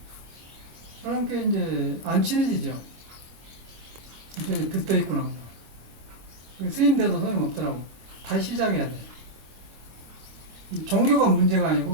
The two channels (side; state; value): left; late; 26 ms